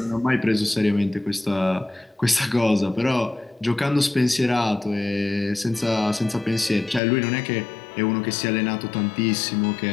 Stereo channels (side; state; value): right; drops out; at 7.0 s